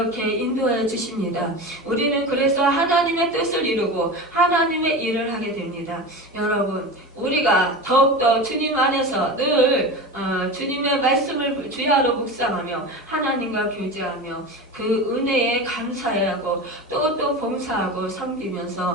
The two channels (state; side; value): normal; both; correlation 0.27